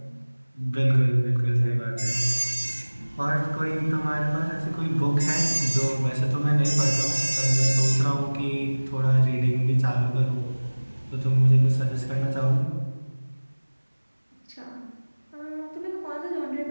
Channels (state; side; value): inverted; both; correlation -1.00